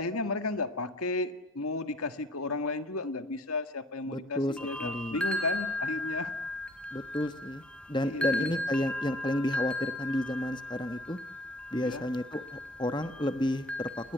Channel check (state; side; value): normal; both; correlation 0.53